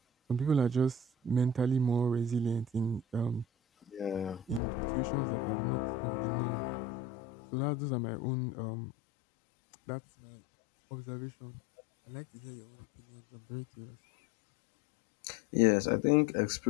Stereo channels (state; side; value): drops out; right; at 4.6 s